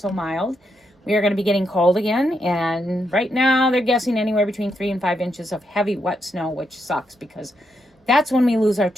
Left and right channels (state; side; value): normal; both; correlation 0.81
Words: mild. We are going to be getting cold again. And right now they're guessing anywhere between 3 and 5 inches of heavy, wet snow, which sucks because that's when we lose our